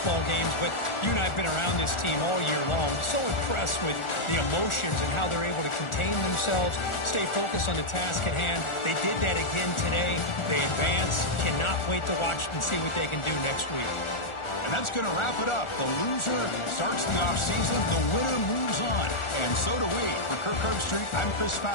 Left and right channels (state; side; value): late; right; 1.4 ms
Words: games, but you and I have been around this team all year long. So impressed with the emotions and how they're able to contain themselves, stay focused on the task at hand. They did that again today. They advance. Cannot wait to watch and see what they can do next week. And that's going to wrap it up. The loser starts the offseason. The winner moves on. And so do we. For Kirk Herbstreit, I'm Chris